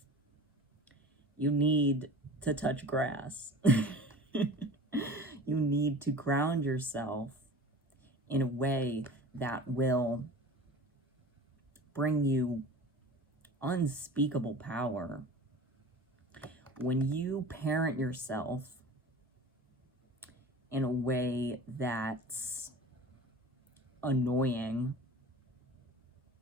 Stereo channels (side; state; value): both; normal; correlation 0.38